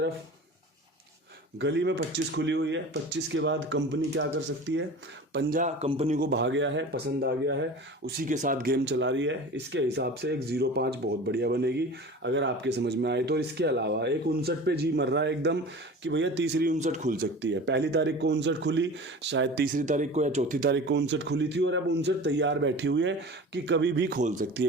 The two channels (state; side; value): normal; both; correlation 0.37